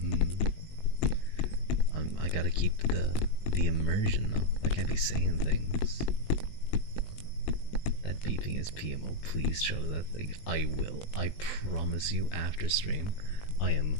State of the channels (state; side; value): late; right; 19 ms